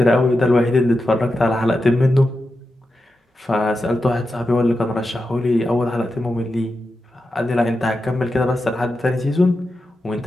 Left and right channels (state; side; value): normal; both; correlation 0.89